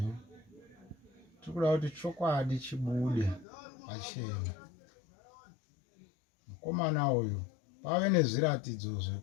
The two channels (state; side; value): drops out; right; at 3.5 s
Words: tikuda kuti chokwadi chibude pachena. Mukomana uyu pave nezviratidzo